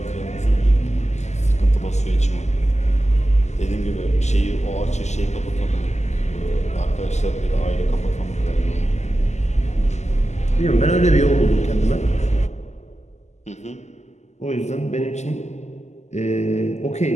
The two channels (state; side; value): late; right; 0.33 ms